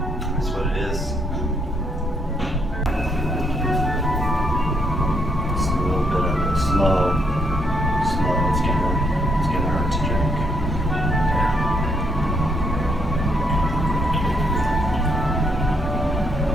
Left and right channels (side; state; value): both; normal; correlation 0.73